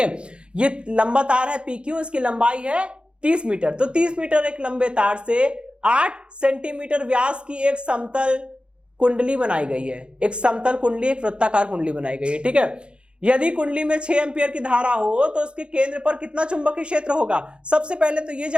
ये लंबा तार है PQ, इसकी लंबाई है 30 मीटर। तो 30 मीटर एक लंबे तार से 8 सेंटीमीटर व्यास की एक समतल कुंडली बनाई गई है। एक समतल कुंडली, एक वृत्ताकार कुंडली बनाई गई है, ठीक है। यदि कुंडली में 6 एम्पियर की धारा हो तो उसके केंद्र पर कितना चुंबकीय क्षेत्र होगा? सबसे पहले तो ये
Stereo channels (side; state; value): left; late; 0.055 ms